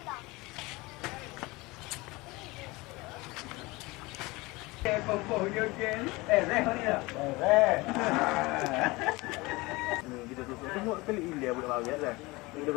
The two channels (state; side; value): quieter; right; 22.9 dB